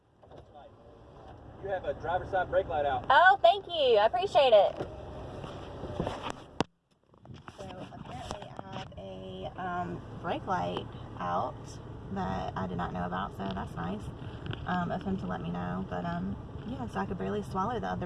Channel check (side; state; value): both; identical; correlation 1.00